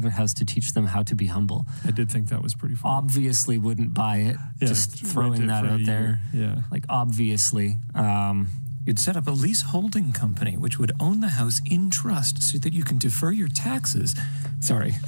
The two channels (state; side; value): inverted; both; correlation -1.00